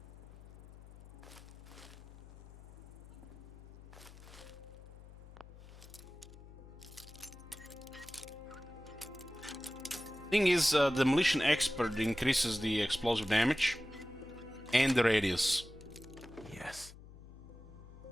Thing is, Demolition Expert increases the explosive damage and the radius. Yes.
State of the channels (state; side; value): noise; left; hum, 18 dB below the sound